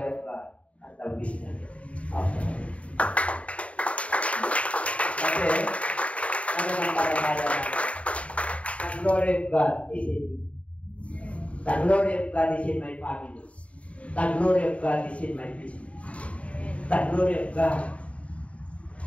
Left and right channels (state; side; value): late; right; 0.065 ms